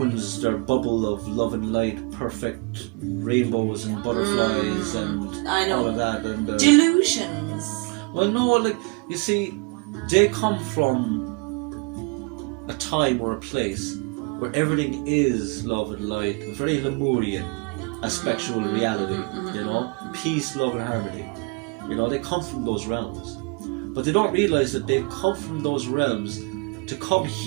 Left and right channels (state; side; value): quieter; left; 29.9 dB